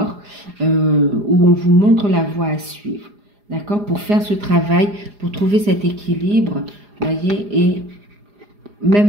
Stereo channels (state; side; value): late; left; 4.9 ms